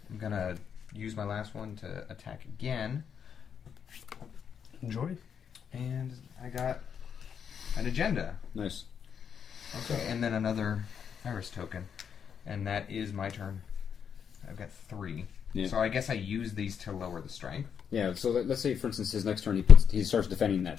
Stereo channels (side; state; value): right; quieter; 7.5 dB